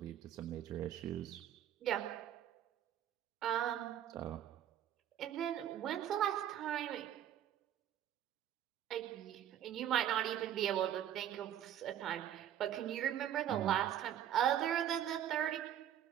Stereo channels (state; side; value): quieter; left; 10.7 dB